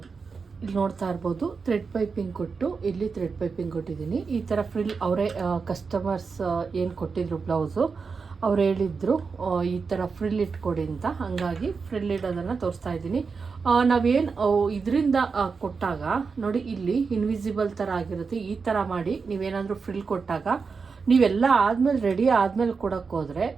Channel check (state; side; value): quieter; left; 5.1 dB